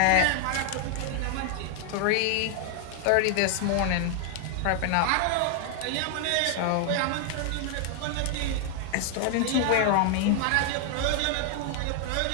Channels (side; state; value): both; different; correlation 0.00